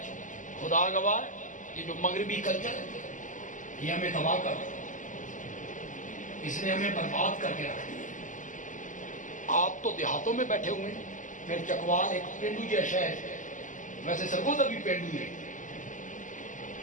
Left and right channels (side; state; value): right; late; 0.37 ms